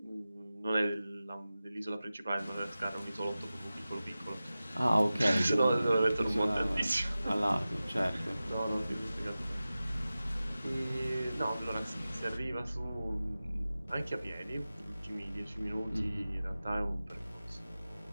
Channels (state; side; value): inverted; both; correlation -0.96